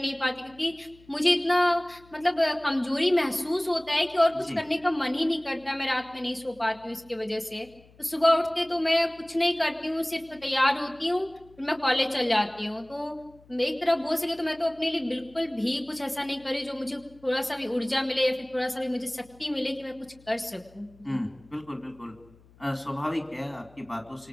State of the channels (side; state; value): left; noise; hum, 27 dB below the sound